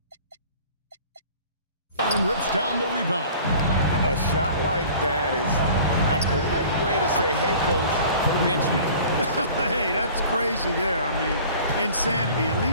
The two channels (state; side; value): inverted; both; correlation -0.46